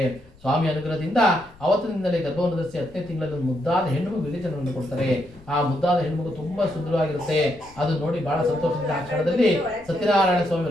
ಸ್ವಾಮಿ ಅನುಗ್ರಹದಿಂದ ಅವತ್ತಿನಿಂದಲೇ ಗರ್ಭವನ್ನು ಧರಿಸಿ 10ನೇ ತಿಂಗಳಲ್ಲಿ ಒಂದು ಮುದ್ದಾದ ಹೆಣ್ಣು ವಿವೇಚನವನ್ನು ಕೊಡ್ತಾರೆ. ಆ ಮುದ್ದಾದ ಹೆಣ್ಣು ತುಂಬಾ ಸುಂದರವಾಗಿರುತ್ತೆ. ಅದು ನೋಡಿ ಬಹಳ ಸಂತೋಷದಿಂದ ಆ ಕ್ಷಣದಲ್ಲಿ ಸತ್ಯನಾರಾಯಣ ಸ್ವಾಮಿ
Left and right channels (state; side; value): noise; left; rumble, 25 dB below the sound